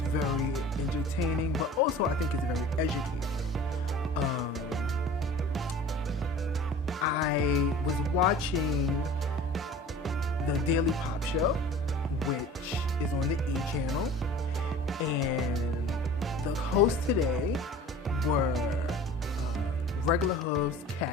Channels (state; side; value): normal; both; correlation 0.42